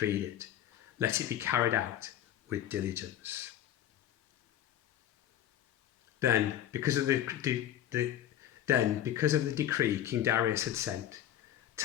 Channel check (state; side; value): quieter; right; 11.3 dB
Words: it. Let it be carried out with diligence. Then, because of the decree King Darius had sent,